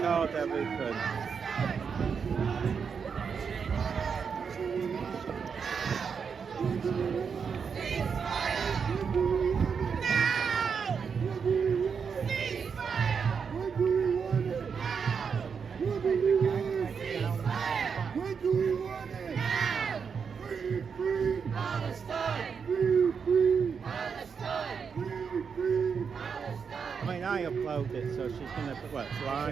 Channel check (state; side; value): quieter; left; 6.2 dB